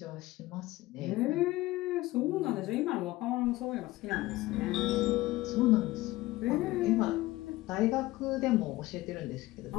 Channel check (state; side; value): quieter; right; 18.4 dB